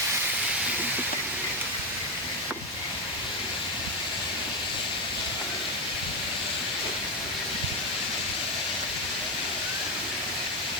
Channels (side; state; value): both; normal; correlation 0.09